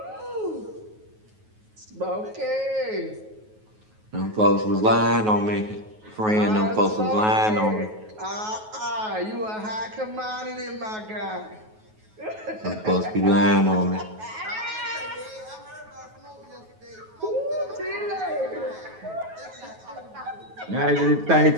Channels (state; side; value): late; left; 9.3 ms